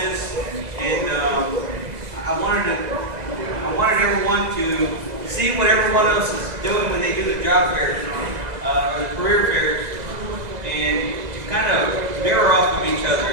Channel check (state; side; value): late; left; 2.0 ms